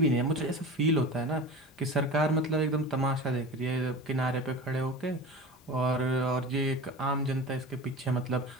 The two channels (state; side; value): normal; both; correlation 0.33